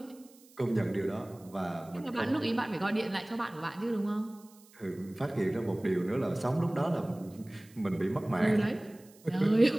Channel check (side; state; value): right; noise; hiss, 26 dB below the sound